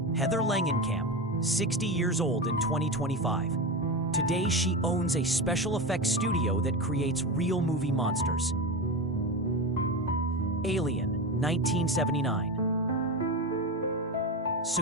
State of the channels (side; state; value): both; normal; correlation 0.20